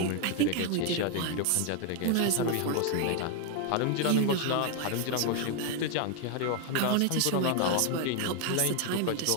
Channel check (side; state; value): both; different; correlation 0.01